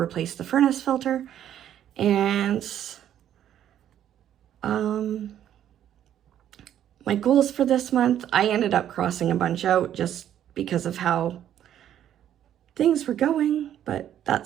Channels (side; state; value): left; quieter; 10.7 dB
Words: the furnace filter. And my goals for this month, I ended up crossing a bunch out just because of how things were going, but